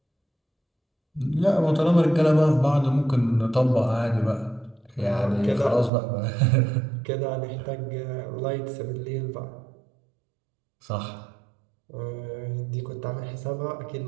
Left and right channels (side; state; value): left; drops out; at 5.9 s